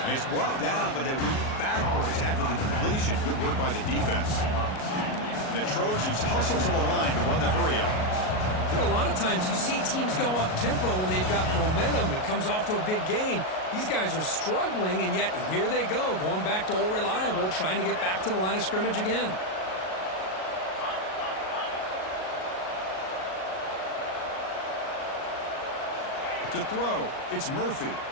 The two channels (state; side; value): late; right; 38 ms